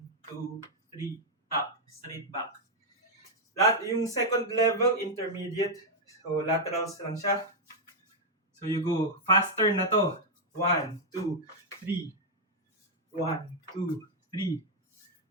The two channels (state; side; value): normal; both; correlation -0.02